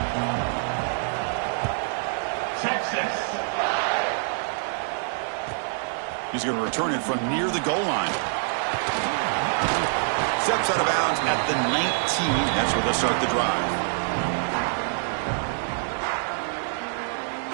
He's going to return it from near the goal line. Steps out of bounds at the 19. That's where they'll start the drive.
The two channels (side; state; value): left; silent; digital silence